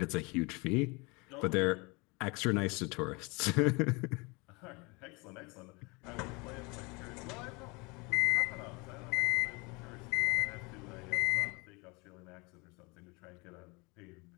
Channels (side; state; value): right; quieter; 28.0 dB